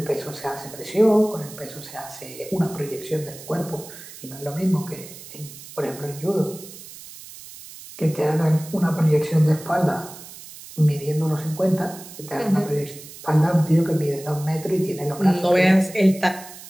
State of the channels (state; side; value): noise; right; hiss, 16 dB below the sound